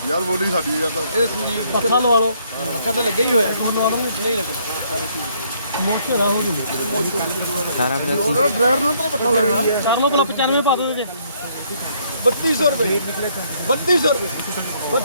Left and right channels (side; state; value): both; inverted; correlation -0.67